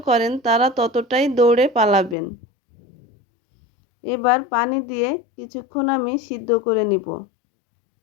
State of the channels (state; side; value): drops out; right; at 2.1 s